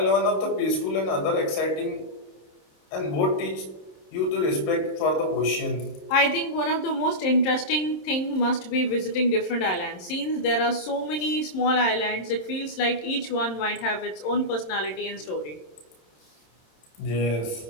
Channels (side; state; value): right; late; 27 ms